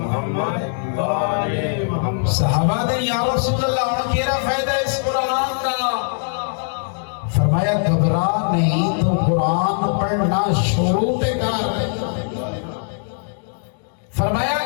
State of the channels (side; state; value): right; silent; digital silence